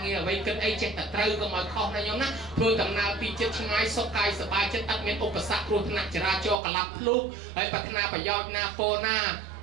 ងារអ្វីគិតអីចេះតែត្រូវកុំឲ្យខុសណាញោមណាធ្វើដំណើរពីចិត្តឆ្ងាយសុខកាយសប្បាយចិត្តអត់មានឧបសគ្គគ្រោះថ្នាក់ចរាចរណ៍កលាប់ភ្លុកហើយប្រាថ្នាប្រយោជន៍ណាពោណា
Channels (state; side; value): drops out; left; at 6.6 s